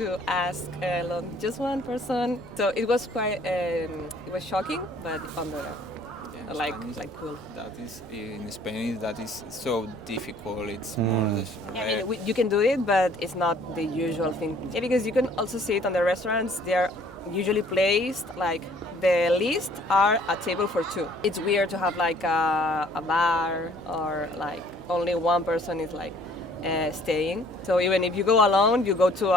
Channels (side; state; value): both; normal; correlation 0.58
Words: ask alone just one person. So it was quite, it was shocking, but on the like cool. That is in Spanish. That is so difficult. It's more Yeah, I mean, you can do it, but it's not the usual thing. Yeah, because you can also see it on the restaurants. They're usually placed like the list are a table for 2. It's weird to have like a bar or like only one person is like staying. So even if you go alone, you go to